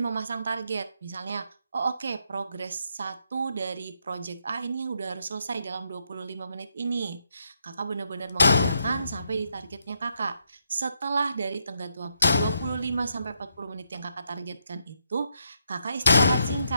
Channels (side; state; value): both; inverted; correlation -0.78